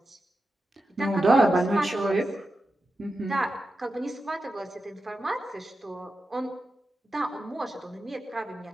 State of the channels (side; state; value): both; normal; correlation 0.90